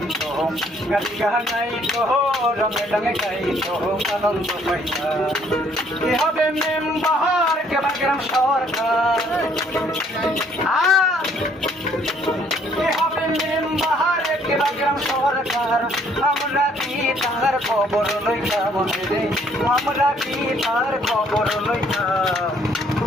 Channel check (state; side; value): normal; both; correlation 0.63